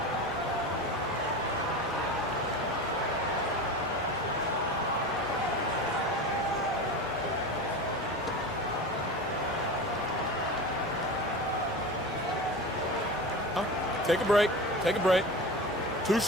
Take a break. Take a break. 2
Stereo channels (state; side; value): normal; both; correlation 0.29